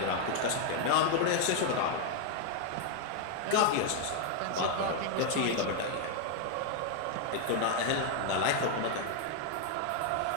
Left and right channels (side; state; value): both; different; correlation 0.01